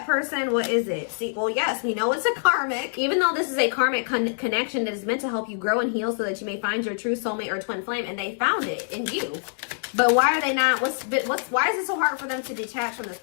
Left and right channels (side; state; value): right; silent; digital silence